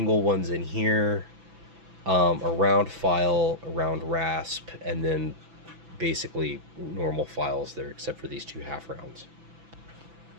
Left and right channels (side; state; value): left; late; 6.0 ms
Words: ones in here, a round file, a round rasp, and then basically normal files there, except for these two half rounds.